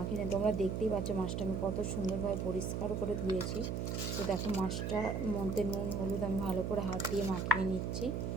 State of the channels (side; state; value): right; noise; hum, 1 dB below the sound